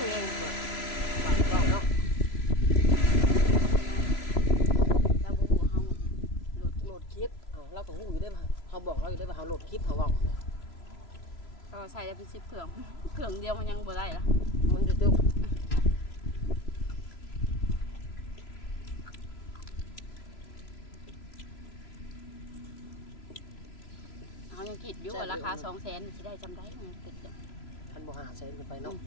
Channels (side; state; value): right; late; 3.0 ms